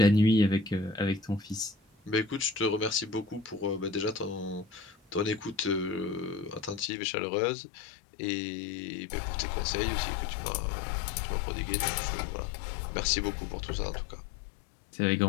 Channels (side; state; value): right; drops out; at 6.9 s